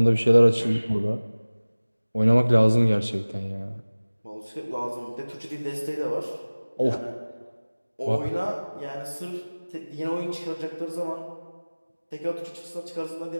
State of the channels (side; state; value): both; inverted; correlation -1.00